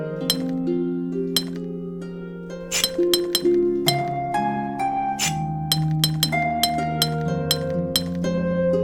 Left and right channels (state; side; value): identical; both; correlation 1.00